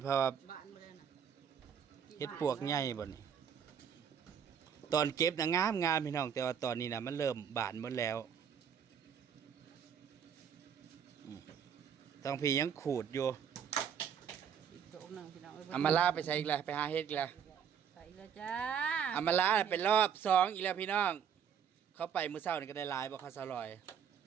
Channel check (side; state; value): left; quieter; 8.0 dB